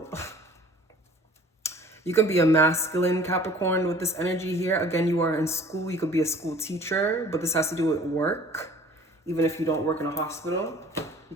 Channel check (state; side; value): normal; both; correlation 0.49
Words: You can be a masculine Capricorn with this energy here. Again, you are in school. You could be a school teacher, but this has to do with work. Even if you don't work in a hospital, you